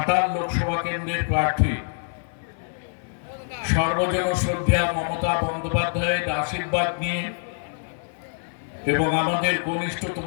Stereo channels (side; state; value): right; silent; 62 dB below the other